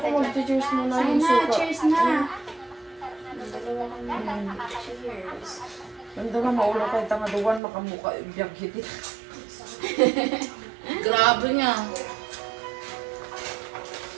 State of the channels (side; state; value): left; drops out; at 7.6 s